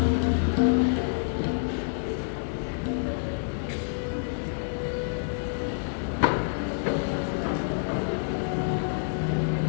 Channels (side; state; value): right; silent; 60 dB below the other